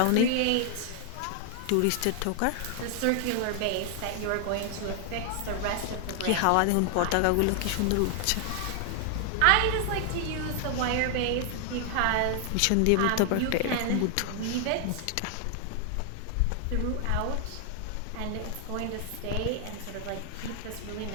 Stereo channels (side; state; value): both; different; correlation 0.00